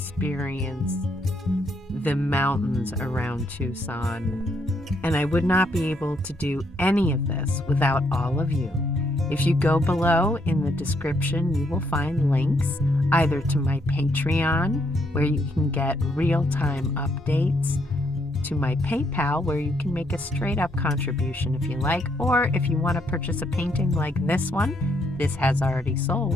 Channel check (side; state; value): both; normal; correlation 0.73